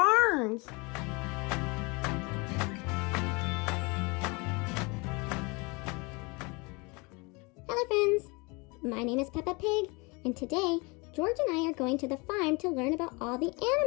Hello friends, my name is Peppa Pig, and today George and I are going to the farm to learn about all the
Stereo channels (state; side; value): quieter; right; 28.0 dB